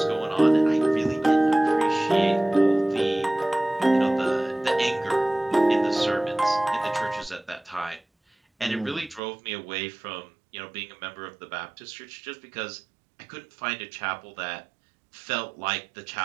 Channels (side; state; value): left; drops out; at 9.2 s